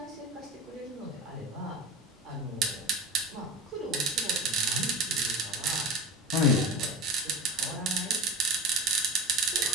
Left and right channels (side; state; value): both; normal; correlation 0.30